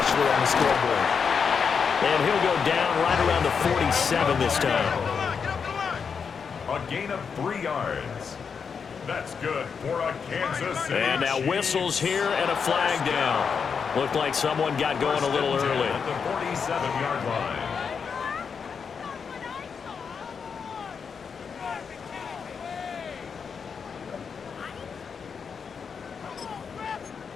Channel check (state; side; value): quieter; right; 6.1 dB